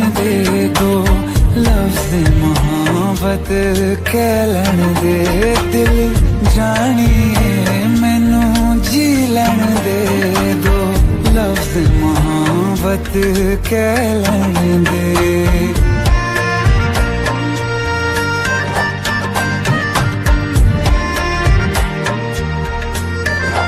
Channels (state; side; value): identical; both; correlation 1.00